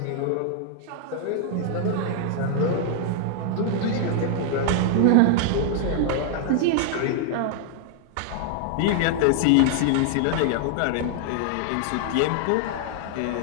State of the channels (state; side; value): different; both; correlation 0.00